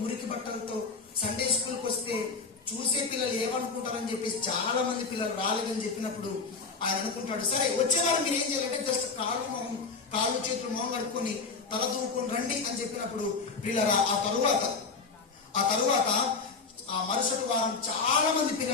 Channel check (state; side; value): quieter; right; 4.6 dB